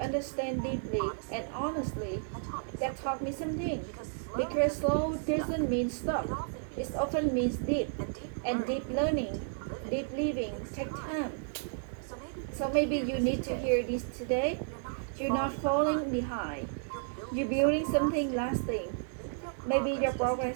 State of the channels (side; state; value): left; silent; digital silence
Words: understand deeply and honestly. That taught me something. Because slow doesn't mean stop. It often means deep. And deep learning, deep living takes time. So maybe you need to hear this today. You're not falling behind. You're building something lasting. Maybe your